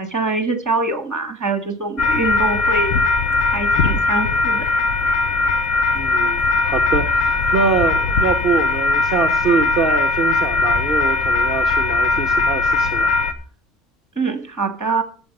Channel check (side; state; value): both; normal; correlation 0.45